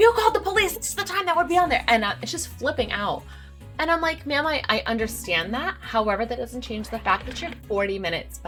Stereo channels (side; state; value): both; identical; correlation 1.00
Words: called the police, this is the time that would be on there. And it's just flipping out. And I'm like, ma'am, I understand that. However, that doesn't change the fact that you're 40 minutes